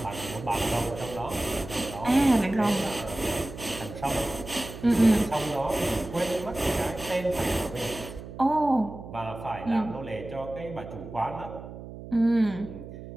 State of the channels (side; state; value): right; noise; hum, 12 dB below the sound